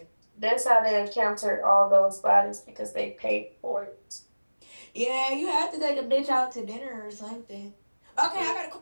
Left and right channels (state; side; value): inverted; both; correlation -1.00